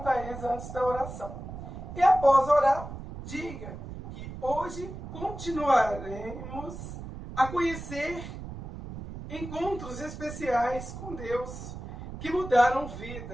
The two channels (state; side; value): noise; right; rumble, 10 dB below the sound